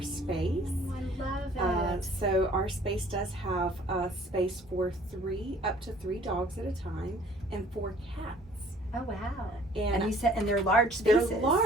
space. I love it. So our space does have space for up to 3 dogs at a time and 4 cats. Oh wow! And you said, and they're large spaces. They're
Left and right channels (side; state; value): both; normal; correlation 0.54